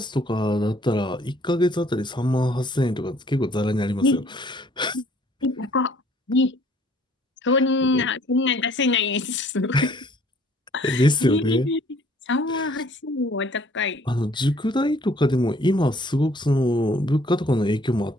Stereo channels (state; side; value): normal; both; correlation 0.59